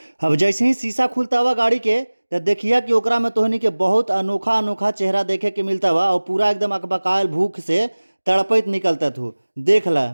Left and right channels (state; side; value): inverted; both; correlation -1.00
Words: अब जैसे ही शीशा खुलता हुआ गाड़ी के, तो देखिया कि ओकरा में तोहनी के बहुत अनोखा अनोखा चेहरा देखे के मिलता बा और पूरा एकदम अकबकायल भूख से तड़पैत निकलता थू। देख ला